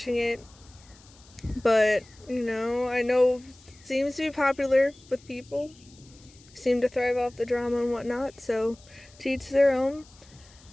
it. But, I know it seems to be popular with people. Seem to thrive off the drama and whatnot, so to each their own.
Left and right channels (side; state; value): left; noise; hiss, 26 dB below the sound